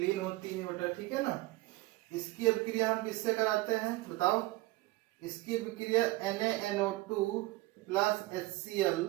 होती है बेटा, ठीक है ना। इसकी अभिक्रिया हम किससे कराते हैं बताओ। इसकी अभिक्रिया NaNO2 plus HCl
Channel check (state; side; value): quieter; left; 20.0 dB